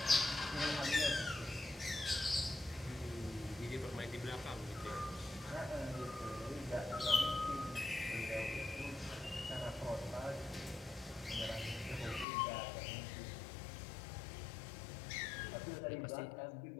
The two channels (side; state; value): right; drops out; at 12.2 s